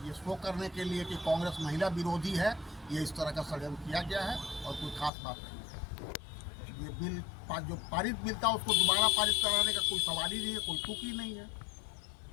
ये शो करने के लिए कि कांग्रेस महिला विरोधी है, ये इस तरह का षड्यंत्र किया गया है और कोई खास बात नहीं है। ये बिल जो पारित बिल था उसको दोबारा पारित कराने का कोई सवाल ही नहीं है, कोई तुक ही नहीं है।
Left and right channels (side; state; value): right; drops out; at 5.1 s